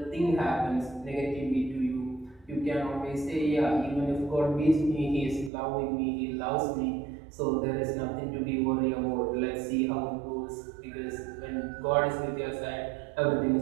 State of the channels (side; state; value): left; drops out; at 5.5 s